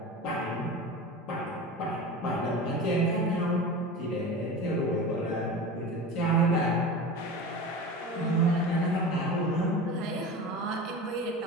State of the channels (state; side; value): normal; both; correlation 0.30